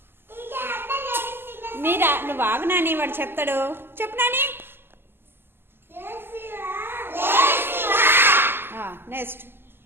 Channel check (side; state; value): left; late; 0.11 ms